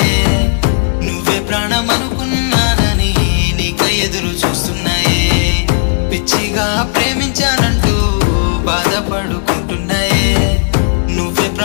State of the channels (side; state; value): right; silent; 60 dB below the other